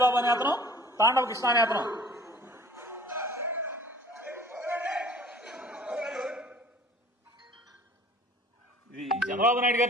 అనే అతను, తాండవ కృష్ణ అనే అతను. ఇది చంద్రబాబు నాయుడు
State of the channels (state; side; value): normal; both; correlation 0.49